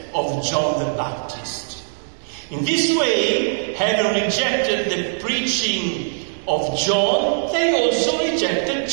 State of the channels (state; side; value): silent; left; digital silence